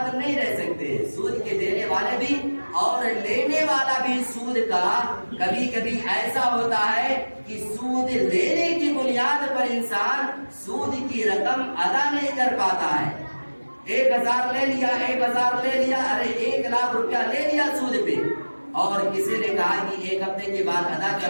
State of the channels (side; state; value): both; inverted; correlation -1.00